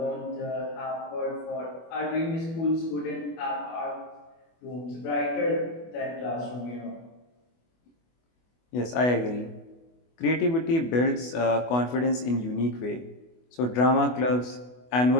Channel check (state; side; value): late; right; 24 ms